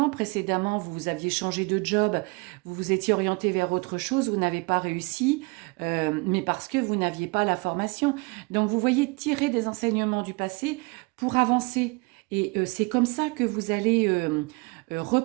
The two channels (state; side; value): quieter; left; 28.9 dB